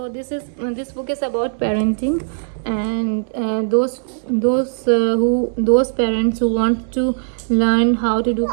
this book is about parenting, and those parents who want to learn how to do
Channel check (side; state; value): left; silent; 61 dB below the other